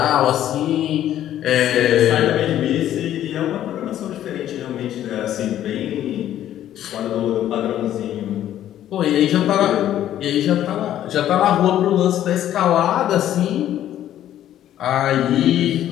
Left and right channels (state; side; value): quieter; right; 11.8 dB